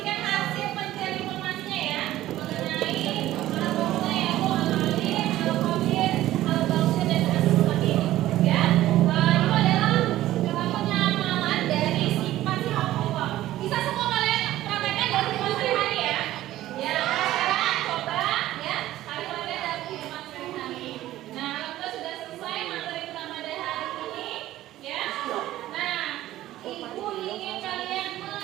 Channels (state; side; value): quieter; left; 14.7 dB